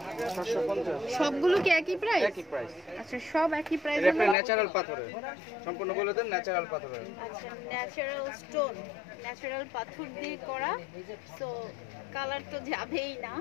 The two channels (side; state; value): right; drops out; at 4.4 s